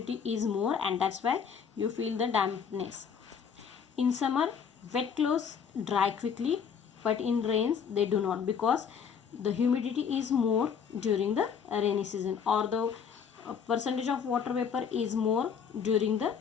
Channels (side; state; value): right; quieter; 6.9 dB